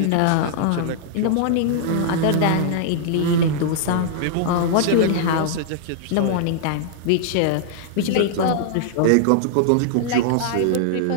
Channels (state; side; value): different; both; correlation -0.01